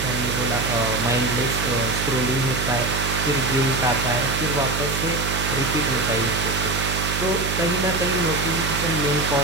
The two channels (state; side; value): noise; right; hum, 4 dB below the sound